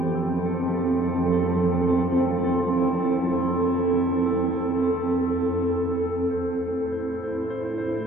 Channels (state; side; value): normal; both; correlation 0.59